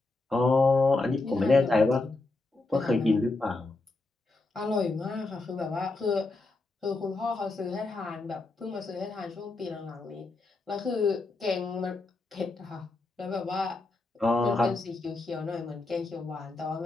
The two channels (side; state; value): right; quieter; 3.3 dB